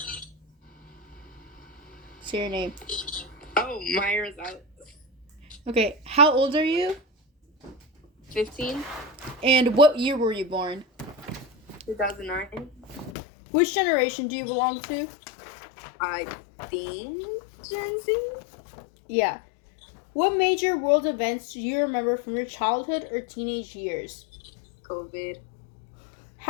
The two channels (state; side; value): drops out; right; at 13.2 s